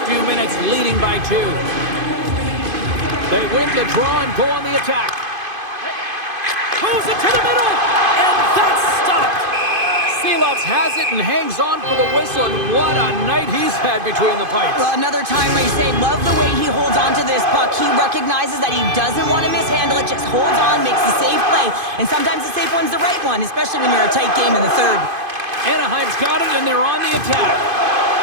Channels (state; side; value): late; left; 2.5 ms